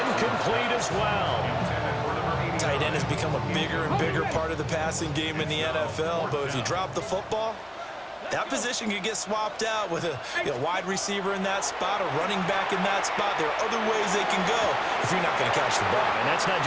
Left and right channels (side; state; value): both; identical; correlation 1.00